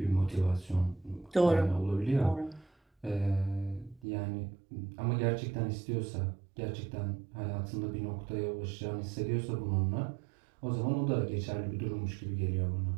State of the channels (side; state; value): left; drops out; at 4.0 s